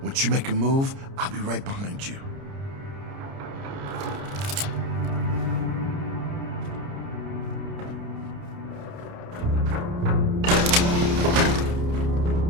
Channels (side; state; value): left; late; 30 ms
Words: Once you make a move, I'll be right behind you.